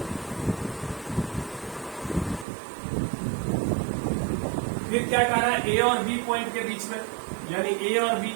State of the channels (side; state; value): left; drops out; at 2.5 s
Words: फिर क्या कह रहा है? ए और बी पॉइंट के बीच में, यानी ए और बी।